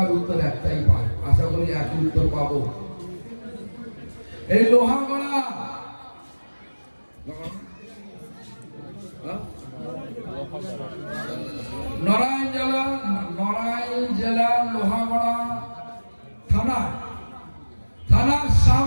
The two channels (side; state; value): both; inverted; correlation -1.00